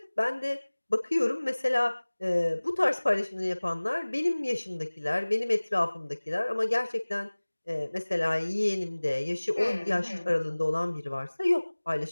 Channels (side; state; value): both; inverted; correlation -1.00